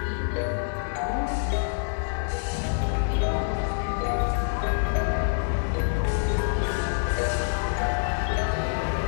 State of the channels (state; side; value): silent; right; 61 dB below the other